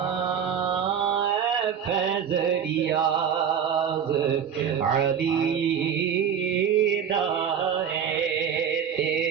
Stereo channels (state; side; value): quieter; left; 8.0 dB